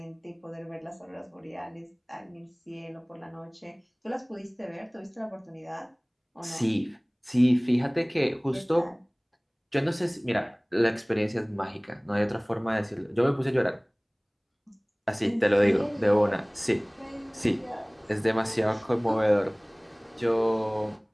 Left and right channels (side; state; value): both; identical; correlation 1.00